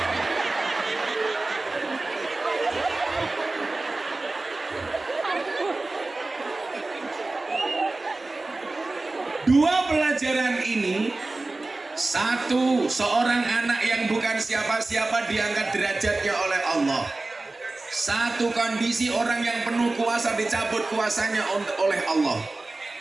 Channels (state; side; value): quieter; left; 3.2 dB